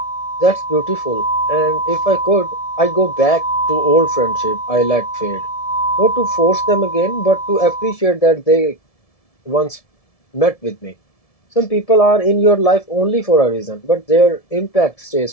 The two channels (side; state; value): right; late; 1.7 ms